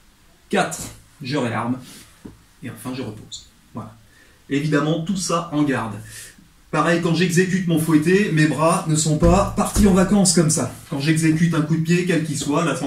4. Je réarme. Et enfin, je repose. Voilà. Évidemment, tout ça en garde. Pareil, quand j'exécute mon fouetté, mes bras ne sont pas partis en vacances comme ça. Quand j'exécute un coup de pied, quel qu'il soit, là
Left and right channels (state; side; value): identical; both; correlation 1.00